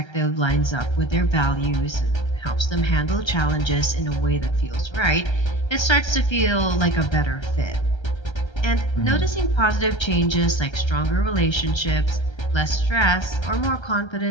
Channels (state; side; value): late; right; 1.3 ms